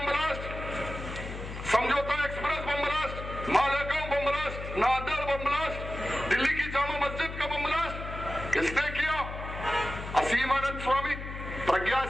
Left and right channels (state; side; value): noise; left; hum, 8 dB below the sound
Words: blast, Samjhauta express bomb blast, Malegaon bomb blast, नादर बम ब्लास्ट, दिल्ली की जामा मस्जिद का बम ब्लास्ट किसने किया? असीम आनंद स्वामी, प्रज्ञा